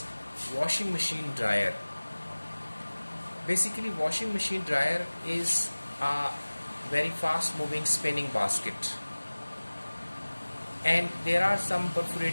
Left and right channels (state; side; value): inverted; both; correlation -1.00